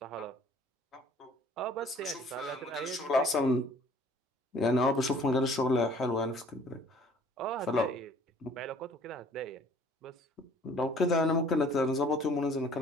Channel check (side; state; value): both; normal; correlation 0.54